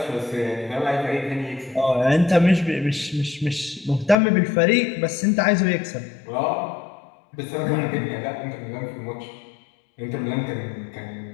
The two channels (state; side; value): drops out; right; at 4.2 s